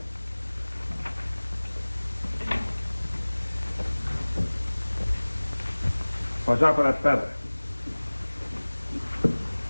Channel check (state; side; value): inverted; both; correlation -1.00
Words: Watch out for that feather.